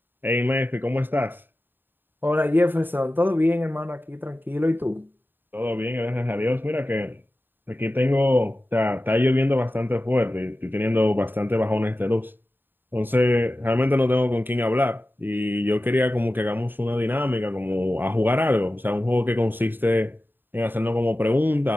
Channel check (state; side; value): late; left; 0.094 ms